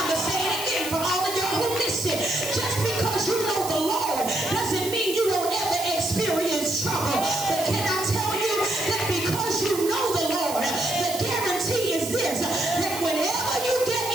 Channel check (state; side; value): noise; right; hiss, 9 dB below the sound